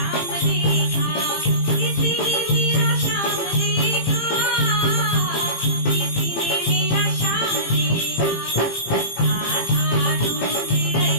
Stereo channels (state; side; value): late; right; 18 ms